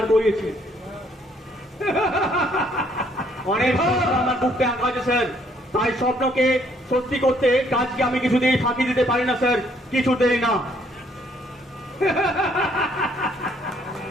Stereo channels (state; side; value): normal; both; correlation 0.66